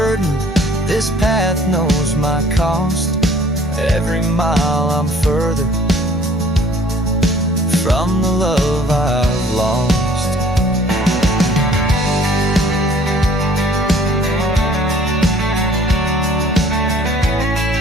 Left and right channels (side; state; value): both; normal; correlation 0.55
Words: this path knows my cost. Every mile I'm further from the love I've lost.